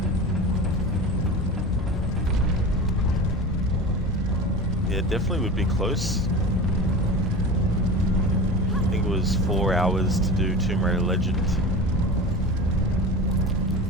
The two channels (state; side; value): normal; both; correlation 0.32